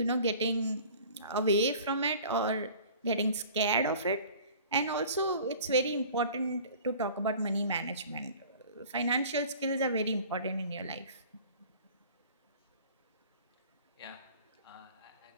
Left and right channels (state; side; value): inverted; both; correlation -0.46